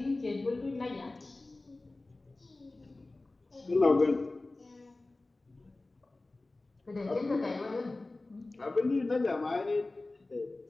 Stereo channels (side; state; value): right; quieter; 3.1 dB